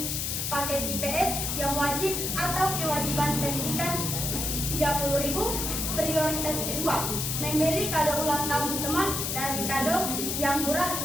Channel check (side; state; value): left; noise; hiss, 1 dB below the sound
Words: paket IPS yang wajib atau kewajiban pendidikan 30.000. Prioritas kedua, membeli kado ulang tahun teman dari kado yang murah